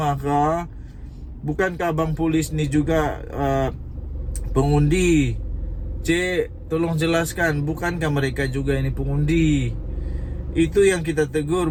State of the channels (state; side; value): identical; both; correlation 1.00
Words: kah? Bukankah abang polis ni juga pengundi? Cik, tolong jelaskan, bukankah mereka juga ini pengundi? Itu yang kita tegur,